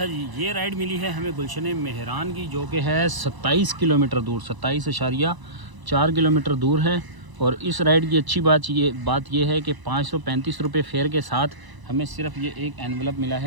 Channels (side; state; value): left; late; 1.0 ms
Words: जी, ये राइड मिली है हमें गुलशन मेहरान की, जो कि है 27 किलोमीटर दूर, 27.4 किलोमीटर दूर है। और इस राइड की अच्छी बात ये है कि 535 रुपये फेयर के साथ हमें सिर्फ ये एक एनवलप मिला